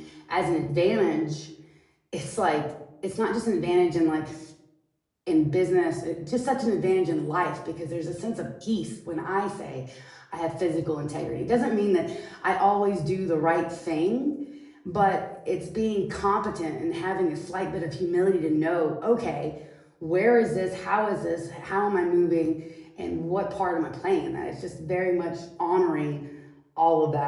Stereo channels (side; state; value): both; identical; correlation 1.00